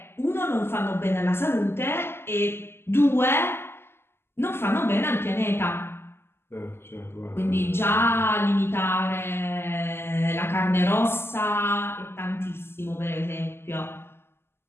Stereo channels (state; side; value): late; right; 0.12 ms